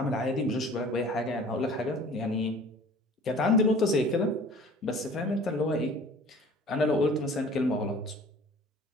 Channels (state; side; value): normal; both; correlation 0.47